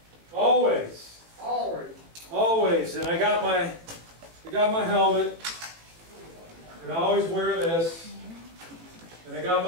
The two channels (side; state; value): left; late; 18 ms